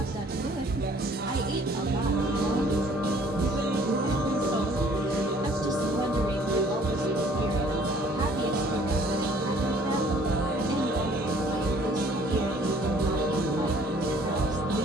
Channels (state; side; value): normal; both; correlation 0.57